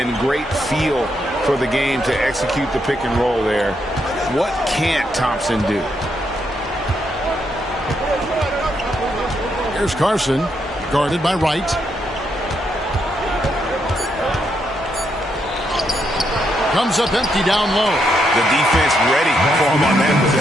great feel for the game to execute the pick and roll there. What can't Thompson do? Here's Carson, guarded by Wright. Comes up empty down low. The defense ready for him on that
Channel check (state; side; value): normal; both; correlation 0.78